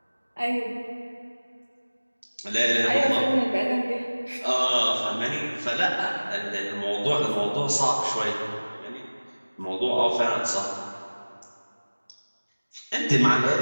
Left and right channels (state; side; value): inverted; both; correlation -1.00